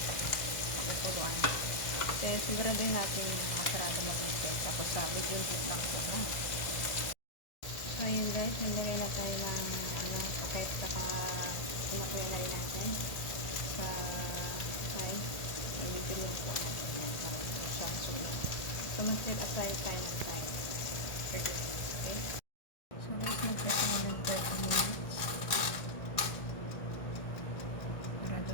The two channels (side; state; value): right; late; 1.6 ms